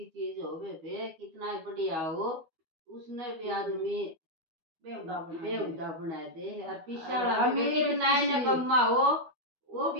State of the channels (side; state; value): left; late; 12 ms